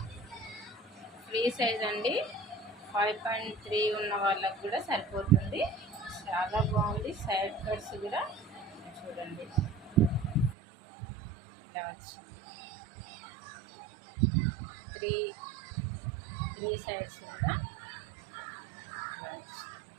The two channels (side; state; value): left; drops out; at 10.6 s